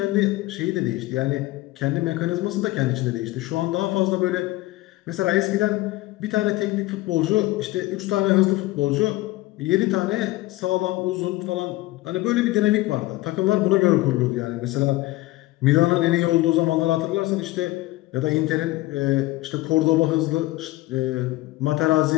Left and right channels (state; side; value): quieter; right; 18.5 dB